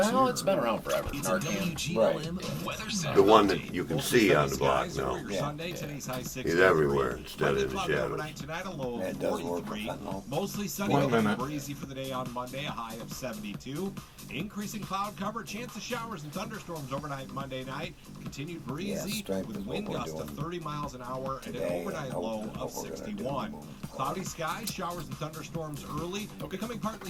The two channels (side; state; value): both; identical; correlation 1.00